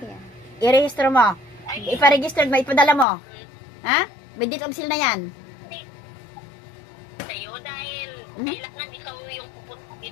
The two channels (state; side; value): drops out; right; at 3.1 s